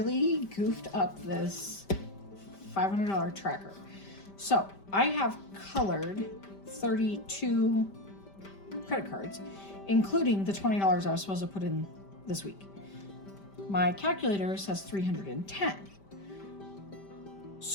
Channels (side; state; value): right; late; 5.1 ms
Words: goofed up this $500 tracker. So I have colored 32 credit cards, including the $20 I was supposed to put in this week. My calculator says 310.